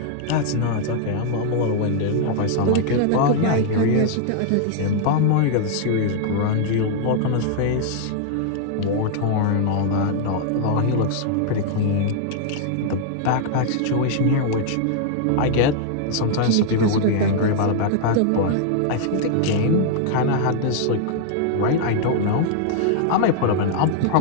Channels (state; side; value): different; both; correlation 0.00